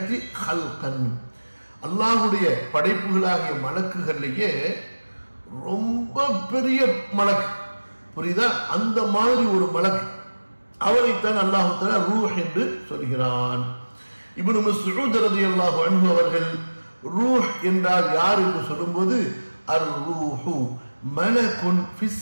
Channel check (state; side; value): inverted; both; correlation -1.00